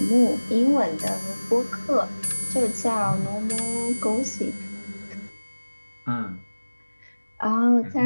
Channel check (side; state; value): both; inverted; correlation -1.00